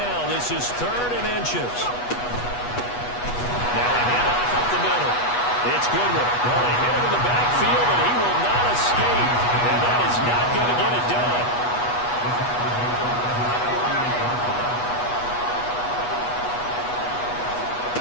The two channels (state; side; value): late; right; 8.2 ms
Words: This is 3rd and inches. Now a handoff up the middle. It's Goodwin. Well, they hit him in the backfield, and he will not escape. And that is not going to get it done.